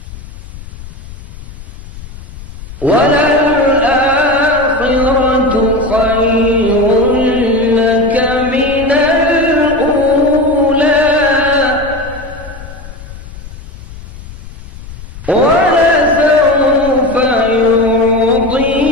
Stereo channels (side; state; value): left; noise; rumble, 15 dB below the sound